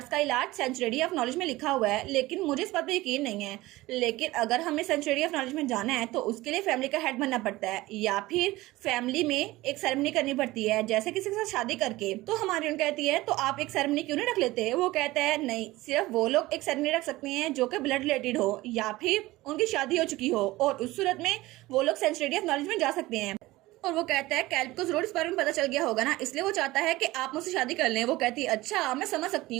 का इलाज सेंचुरी ऑफ नॉलेज में लिखा हुआ है, लेकिन मुझे इस बात पर यकीन नहीं है। लेकिन अगर हमें सेंचुरी ऑफ नॉलेज में जाना है तो उसके लिए फैमिली का हेड बनना पड़ता है या फिर फैमिली में एक सेरेमनी करनी पड़ती है, जैसे किसी के साथ शादी करके। तो हमारी उन कहती है तो आप एक सेरेमनी क्यों नहीं रख लेते? वो कहता है नहीं, सिर्फ वो लोग एक सेरेमनी रख सकते हैं जो कि ब्लड रिलेटेड हो या फिर उनकी शादी हो चुकी हो, और उस सूरत में वो लोग सेंचुरी ऑफ नॉलेज में जा सकते हैं। और वो कहता है कैल्ब को जरूर इस बारे में पता चल गया होगा ना, इसलिए वो चाहता है कि आप मुझसे शादी कर लें। वो कहती है अच्छा मैं समझ सकती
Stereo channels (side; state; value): left; quieter; 18.8 dB